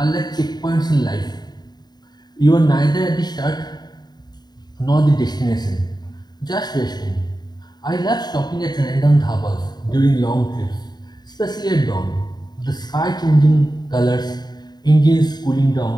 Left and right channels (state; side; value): late; right; 0.20 ms